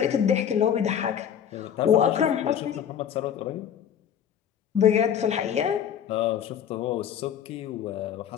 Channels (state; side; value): quieter; right; 9.0 dB